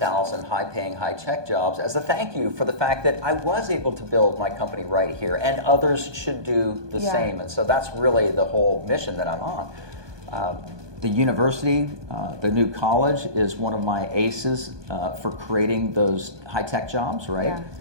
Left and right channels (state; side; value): late; left; 1.2 ms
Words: high-paying, high-tech jobs as a thank you for the fact that I was able to build my company right here, and others should do the same. And so that's really the whole mission that I'm on. The university, the new college, is one of my aces for creating those high-tech jobs, right?